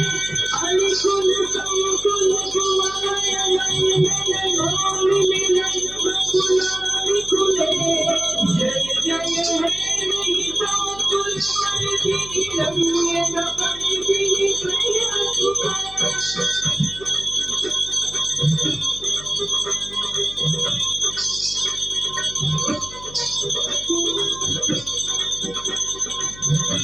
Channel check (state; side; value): noise; left; hum, 18 dB below the sound